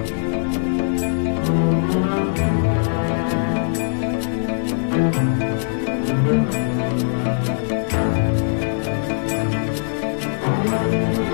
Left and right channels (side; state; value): right; silent; digital silence